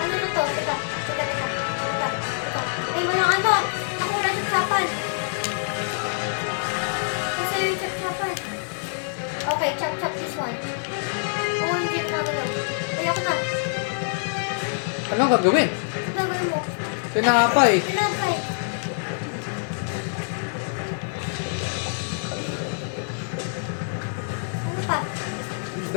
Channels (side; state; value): right; silent; 62 dB below the other